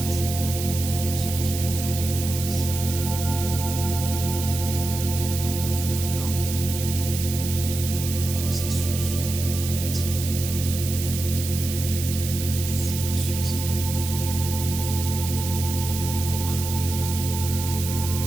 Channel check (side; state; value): right; noise; hiss, 7 dB below the sound